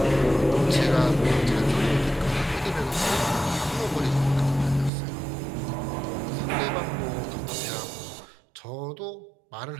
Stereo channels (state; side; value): drops out; left; at 4.9 s